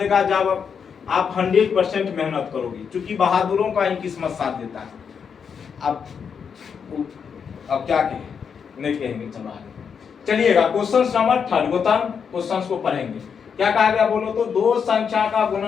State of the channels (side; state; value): right; quieter; 6.7 dB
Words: जब आप 100% मेहनत करोगे, क्योंकि बहादुरों का ही किस्मत साथ देता है। अब क्या कहें, नहीं कहेंगे, चलो आगे चलिएगा। क्वेश्चन नंबर 3 गौतम क्वेश्चन को पढ़ेंगे। क्या कहा गया बोलो तो? दो संख्या का